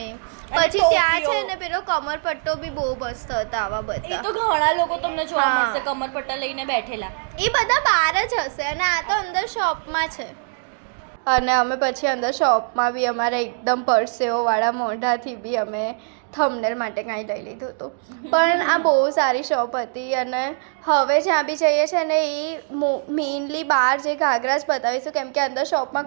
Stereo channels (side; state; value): left; silent; digital silence